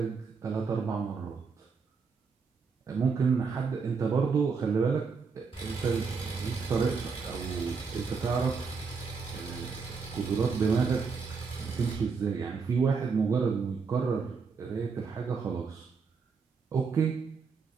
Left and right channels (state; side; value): quieter; left; 5.2 dB